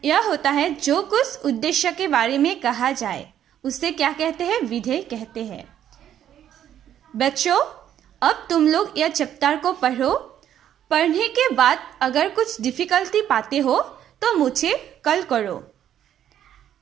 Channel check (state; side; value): quieter; left; 10.5 dB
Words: यह होता है जो कुछ उद्देश्य के बारे में कहा जाए उसे क्या कहते हैं? विधेय कहते हैं. बच्चों, अब तुम लोग यह चैप्टर को पढ़ो. पढ़ने के बाद अगर कुछ डिफिकल्टी पाते हो तो मुझे कॉल करो.